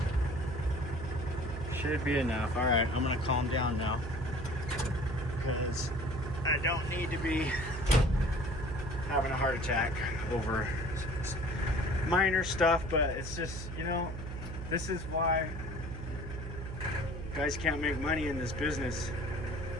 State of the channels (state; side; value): noise; right; hum, 8 dB below the sound